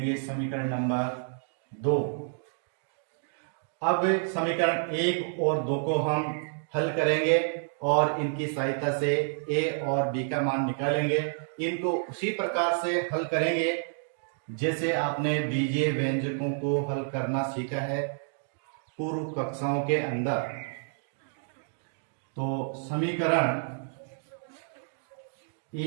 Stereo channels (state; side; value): silent; left; digital silence